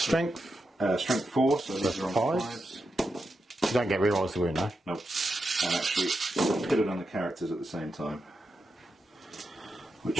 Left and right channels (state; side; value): normal; both; correlation 0.87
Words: Strength 4, so these are on 5s. You don't get rerolls to win, no? Nope. And actually put it on the characters at the same time,